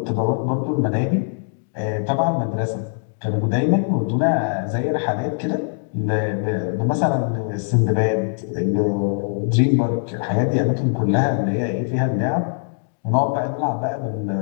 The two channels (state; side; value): silent; right; digital silence